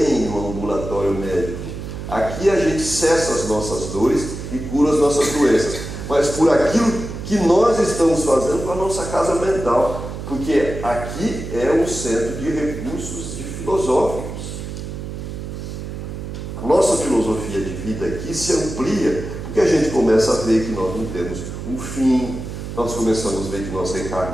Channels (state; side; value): noise; right; hum, 8 dB below the sound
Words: um ambulatório médico. Aqui a gente cessa as nossas dores e cura as nossas doenças. Mas por aquilo que nós estamos fazendo com a nossa casa mental. Porque aqui é um centro de recursos filosóficos. A nossa filosofia de vida aqui se amplia, porque a gente começa a ver que nós não temos um fim, nós começamos a ver que nós